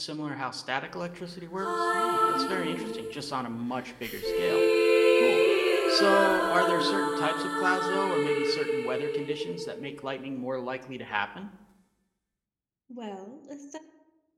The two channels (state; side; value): identical; both; correlation 1.00